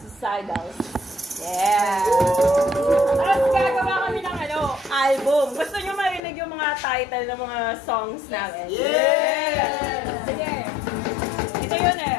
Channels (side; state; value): right; drops out; at 6.2 s